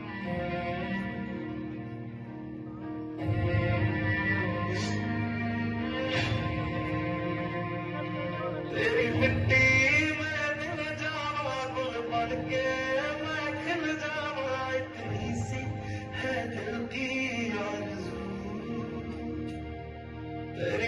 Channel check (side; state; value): both; identical; correlation 1.00